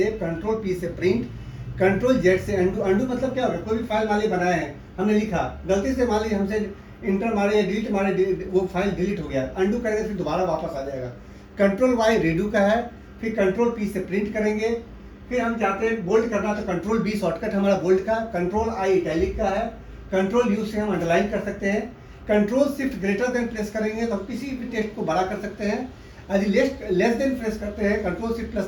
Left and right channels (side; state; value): both; identical; correlation 1.00